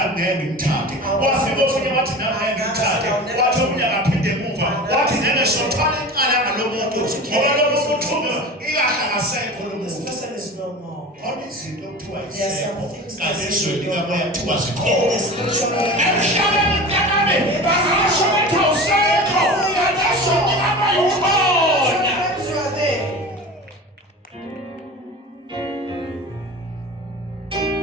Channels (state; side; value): normal; both; correlation 0.34